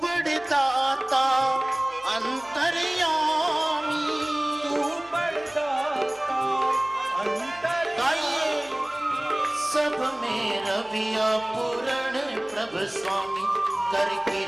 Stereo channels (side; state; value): right; noise; hum, 28 dB below the sound